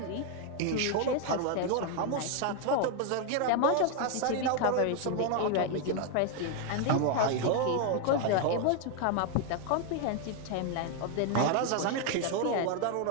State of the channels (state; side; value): different; both; correlation 0.01